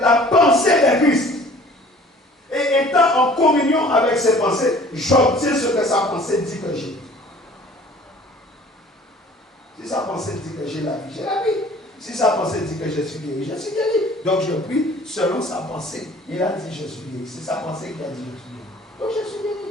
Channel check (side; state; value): both; normal; correlation 0.50